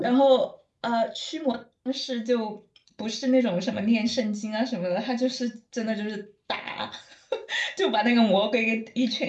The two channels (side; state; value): both; identical; correlation 1.00